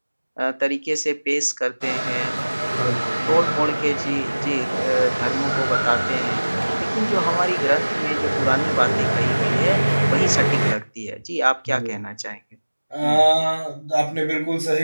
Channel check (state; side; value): inverted; both; correlation -1.00